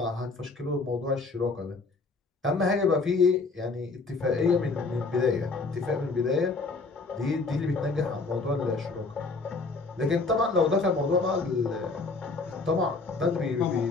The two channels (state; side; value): quieter; right; 3.8 dB